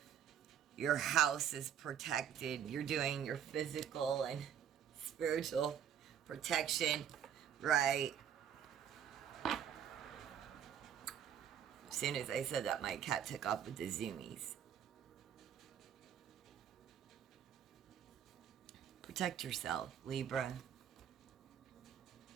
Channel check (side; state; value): left; quieter; 8.9 dB